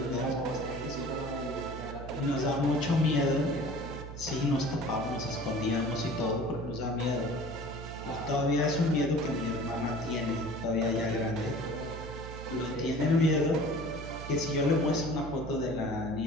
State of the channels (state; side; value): noise; right; hum, 10 dB below the sound